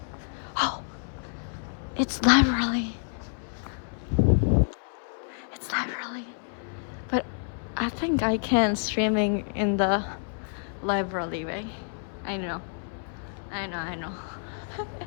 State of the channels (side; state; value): right; silent; 59 dB below the other